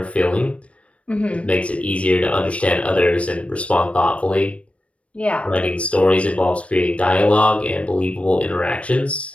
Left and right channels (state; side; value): late; right; 0.062 ms